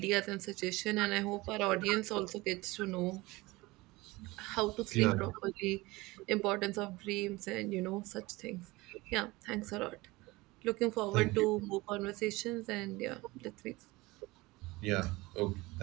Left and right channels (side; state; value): left; quieter; 21.5 dB